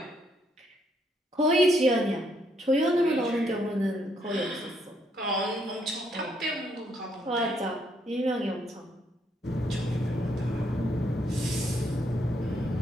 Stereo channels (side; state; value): both; normal; correlation 0.73